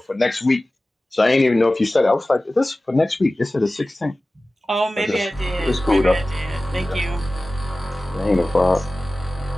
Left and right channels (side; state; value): both; normal; correlation 0.97